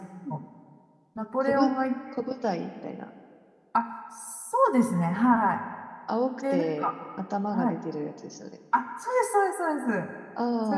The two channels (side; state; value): both; identical; correlation 1.00